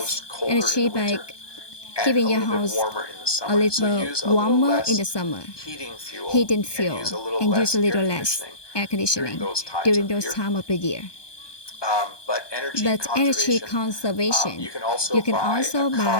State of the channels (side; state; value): right; late; 1.2 ms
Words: energy by keeping your house a little warmer in the summer, heating fuel, and use a little less air conditioning during those times of the year. But energy conservation. You can also